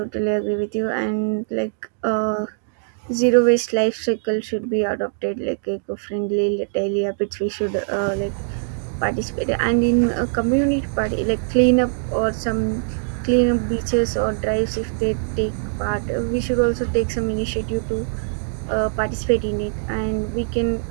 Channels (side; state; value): left; silent; digital silence